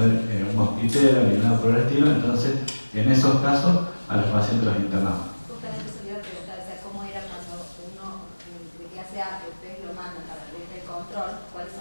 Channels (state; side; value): inverted; both; correlation -1.00